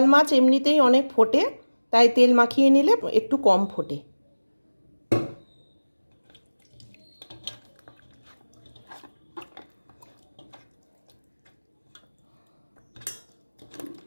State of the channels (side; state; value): both; inverted; correlation -1.00